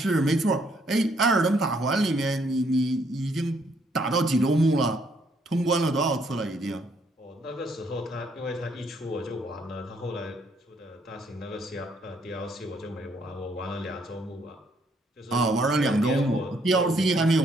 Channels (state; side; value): normal; both; correlation 0.69